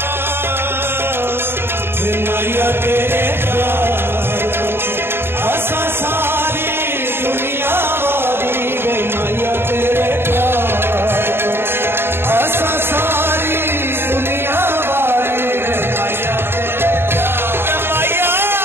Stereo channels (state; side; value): late; left; 0.11 ms